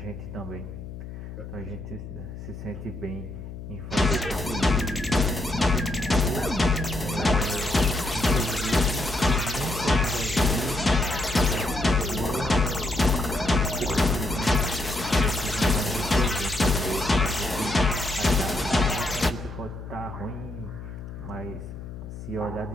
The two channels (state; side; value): noise; left; hum, 11 dB below the sound